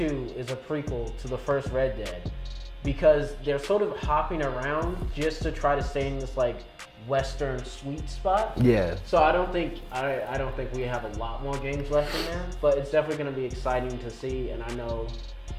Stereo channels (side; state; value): both; identical; correlation 1.00